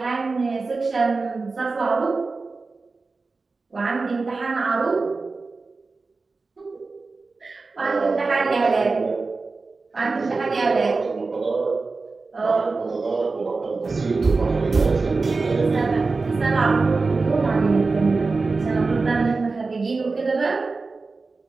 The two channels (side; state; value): left; quieter; 3.9 dB